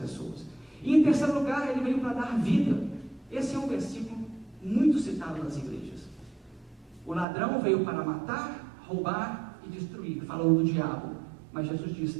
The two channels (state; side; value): drops out; left; at 7.2 s